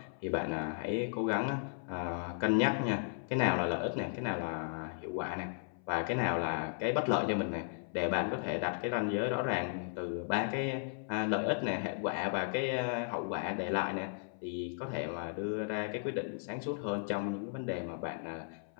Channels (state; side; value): silent; right; 54 dB below the other